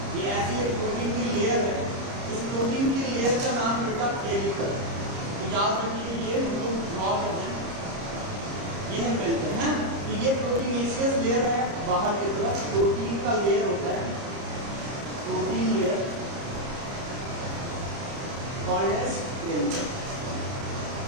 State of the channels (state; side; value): late; left; 30 ms